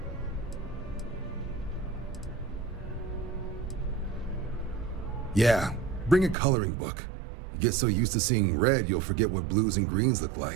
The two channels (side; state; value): left; drops out; at 6.4 s